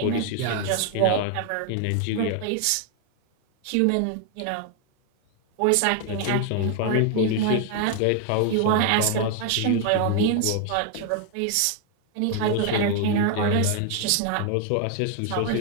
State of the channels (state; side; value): different; both; correlation 0.00